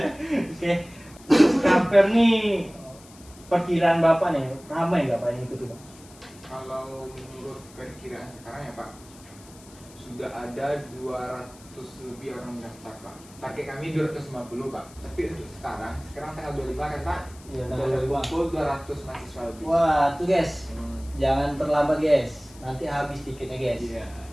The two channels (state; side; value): noise; left; hiss, 23 dB below the sound